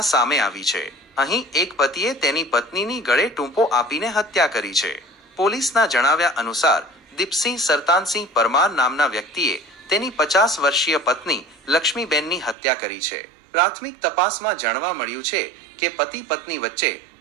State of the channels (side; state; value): left; drops out; at 12.6 s